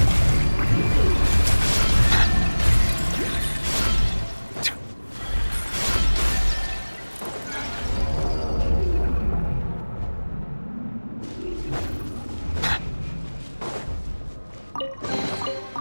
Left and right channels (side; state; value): both; inverted; correlation -1.00